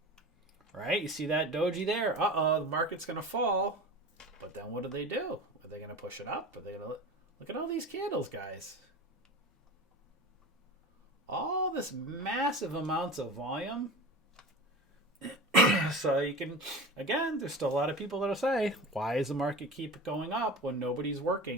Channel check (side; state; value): both; normal; correlation 0.32